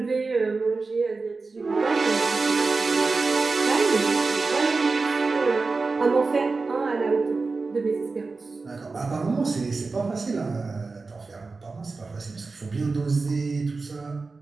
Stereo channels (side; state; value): left; quieter; 4.0 dB